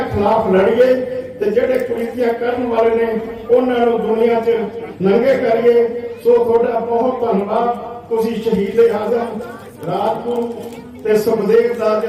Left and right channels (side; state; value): both; identical; correlation 1.00